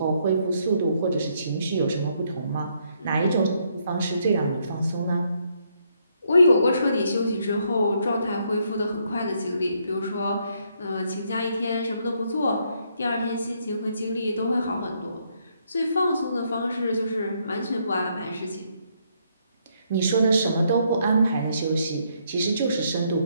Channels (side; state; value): both; inverted; correlation -0.73